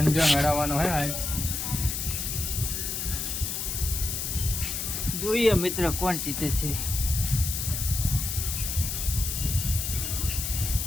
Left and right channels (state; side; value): noise; left; hiss, 3 dB below the sound